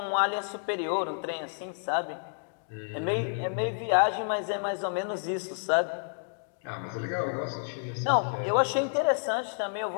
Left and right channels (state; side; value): silent; right; digital silence